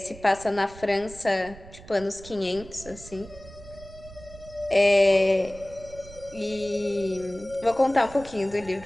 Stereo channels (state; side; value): noise; right; rumble, 18 dB below the sound